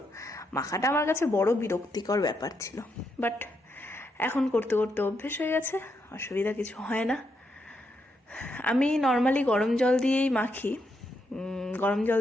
মাখাটা আমার কাছে বড় বিরক্তিকর ব্যাপার ছিল। বাট এখন করতে করতে অভ্যেস হয়ে গেছে, অসুবিধা কিছু হয় না। আমি নর্মালি গরম জল দিয়েই মাখি। গরম জল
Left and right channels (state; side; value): normal; both; correlation 0.80